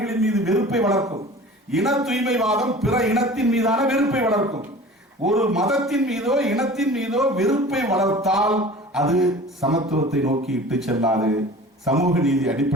மீது வெறுப்பை வளர்க்கும். இன தூய்மைவாதம் பிற இனத்தின் மீதான வெறுப்பை வளர்க்கும். ஒரு மதத்தின் மீதோ இனத்தின் மீதோ வெறுப்பை வளர்த்தால் அது சமத்துவத்தை நோக்கி இட்டு செல்லாது, சமூக நீதி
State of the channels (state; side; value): normal; both; correlation 0.41